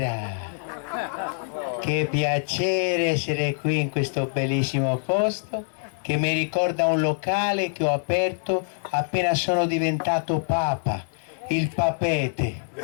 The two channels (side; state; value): right; silent; digital silence